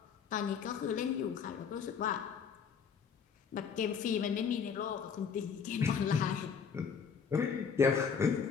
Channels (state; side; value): quieter; right; 6.5 dB